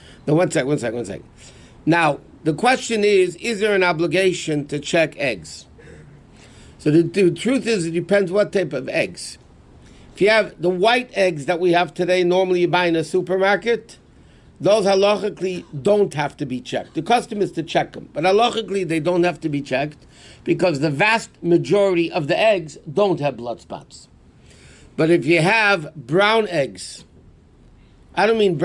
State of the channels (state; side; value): identical; both; correlation 1.00